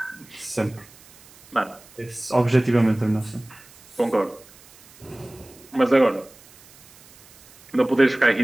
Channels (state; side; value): noise; right; hiss, 25 dB below the sound